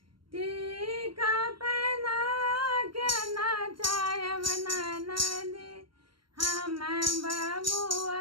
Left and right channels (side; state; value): left; late; 0.73 ms